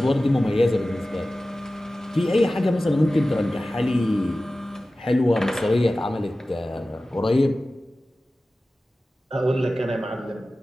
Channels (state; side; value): normal; both; correlation 0.96